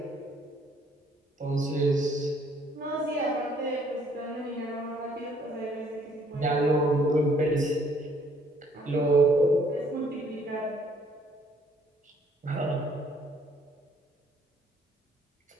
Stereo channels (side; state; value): both; normal; correlation 0.63